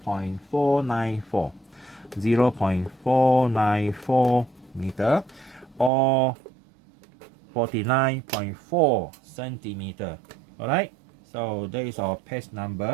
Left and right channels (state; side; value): drops out; left; at 5.9 s